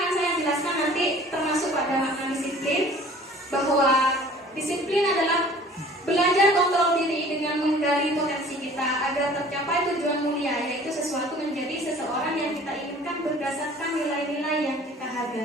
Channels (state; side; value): normal; both; correlation 0.49